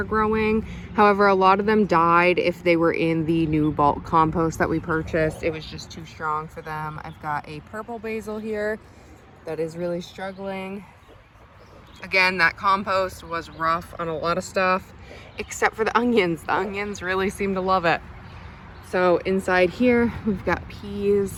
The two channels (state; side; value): identical; both; correlation 1.00